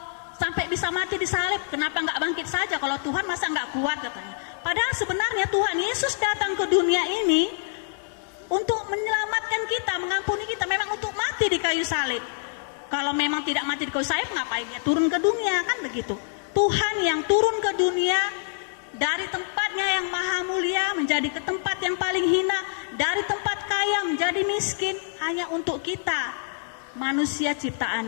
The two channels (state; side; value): silent; right; digital silence